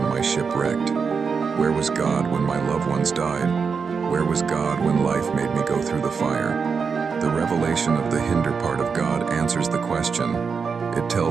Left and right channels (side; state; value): left; quieter; 5.6 dB